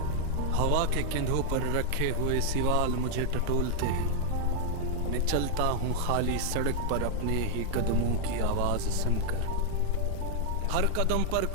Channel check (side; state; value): both; different; correlation -0.01